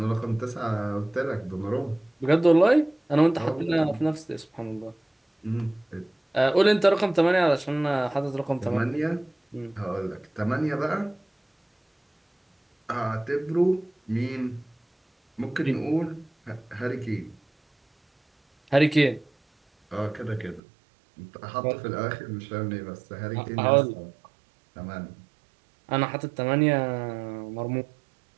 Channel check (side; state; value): left; drops out; at 20.6 s